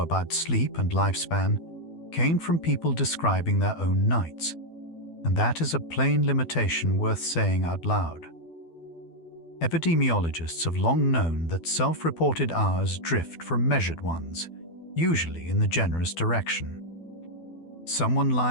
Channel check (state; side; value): late; right; 12 ms